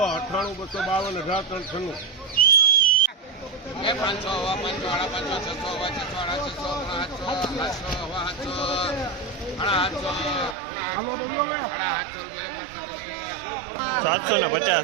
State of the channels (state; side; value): drops out; left; at 10.6 s